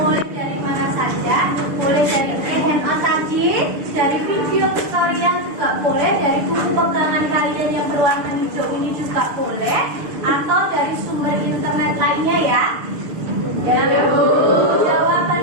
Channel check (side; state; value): left; late; 6.6 ms